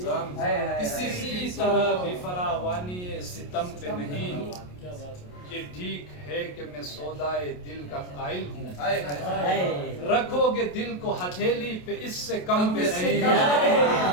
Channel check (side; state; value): right; late; 28 ms